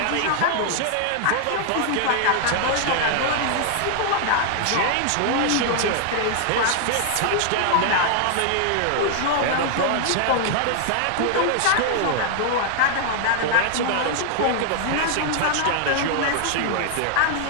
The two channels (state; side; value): different; both; correlation 0.00